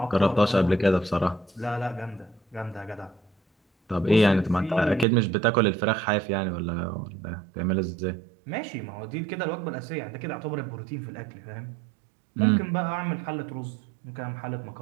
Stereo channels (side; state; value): left; drops out; at 5.1 s